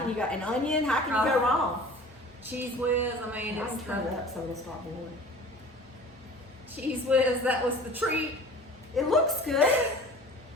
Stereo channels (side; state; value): both; normal; correlation 0.43